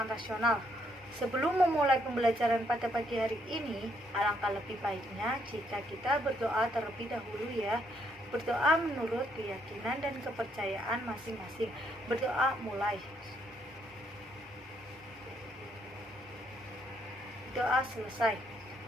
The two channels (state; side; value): normal; both; correlation 0.72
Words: rasional. Sebelum memulai pembelajaran pada pagi hari ini, alangkah lebih baiknya jika kita berdoa terlebih dahulu ya. Berdoa menurut keyakinan dan kepercayaan masing-masing. Berdoa mulai. Doa selesai.